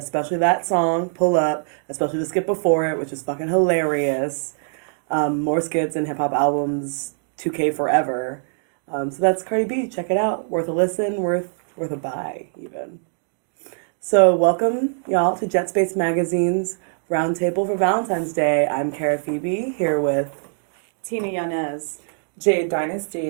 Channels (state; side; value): silent; left; digital silence